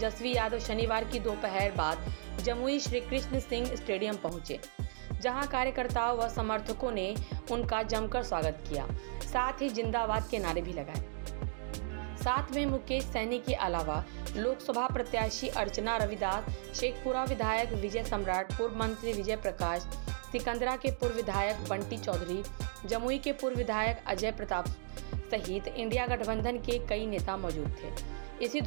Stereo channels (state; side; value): silent; left; digital silence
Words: यादव शनिवार की दोपहर बाद जमुई श्री कृष्ण सिंह स्टेडियम पहुंचे, जहां कार्यकर्ताओं व समर्थकों ने उनका जमकर स्वागत किया, साथ ही जिंदाबाद के नारे भी लगाए। साथ में मुकेश सैनी के अलावा लोकसभा प्रत्याशी अर्चना रविदास, शेखपुरा विधायक विजय सम्राट, पूर्व मंत्री विजय प्रकाश, सिकंदरा के पूर्व विधायक बंटी चौधरी, जमुई के पूर्व विधायक अजय प्रताप सहित इंडिया गठबंधन के कई नेता मौजूद थे। इसी